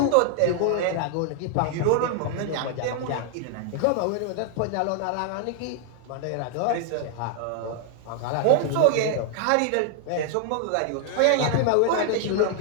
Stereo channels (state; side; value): different; both; correlation 0.00